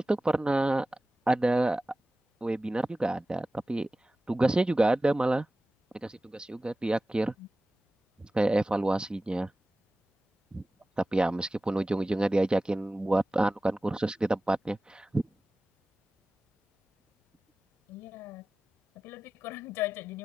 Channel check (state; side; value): normal; both; correlation 0.96